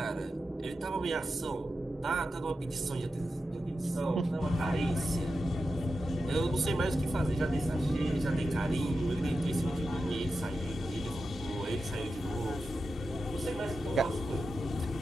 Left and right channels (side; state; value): both; normal; correlation 0.90